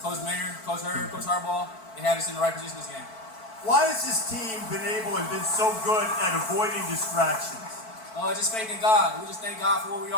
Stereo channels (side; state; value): right; late; 4.5 ms